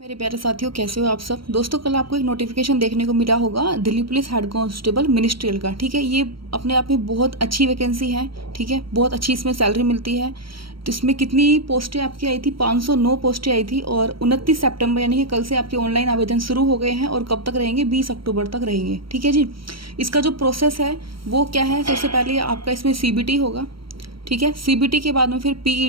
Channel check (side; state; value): left; late; 0.74 ms